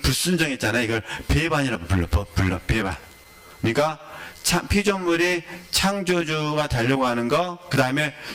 이걸 배반이라고 불러, 배반. 그러니까 피조물이 창조주가 되려고 하는 거, 그 다음에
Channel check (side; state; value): both; identical; correlation 1.00